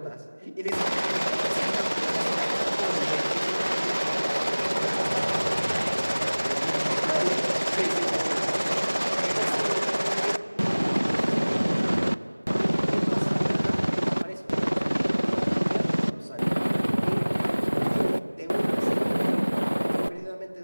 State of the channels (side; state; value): both; inverted; correlation -1.00